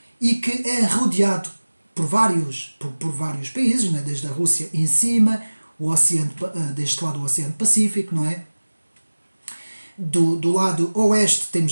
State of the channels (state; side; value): inverted; both; correlation -1.00